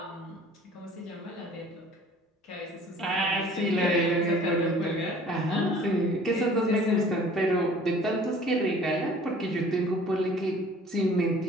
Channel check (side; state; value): both; normal; correlation 0.51